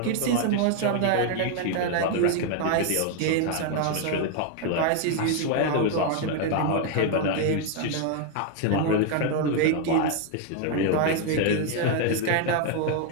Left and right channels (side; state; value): both; different; correlation 0.00